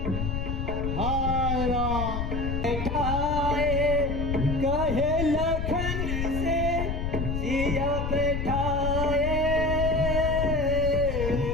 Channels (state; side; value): noise; left; rumble, 2 dB below the sound